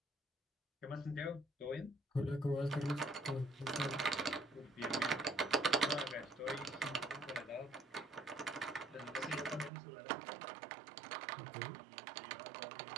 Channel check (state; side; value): drops out; left; at 9.7 s